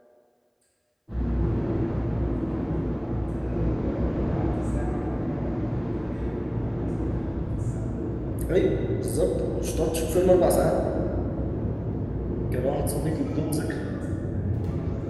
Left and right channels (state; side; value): identical; both; correlation 1.00